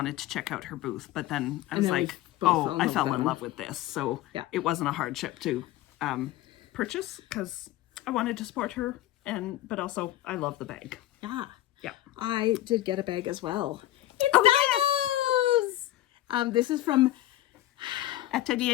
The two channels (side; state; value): right; quieter; 14.8 dB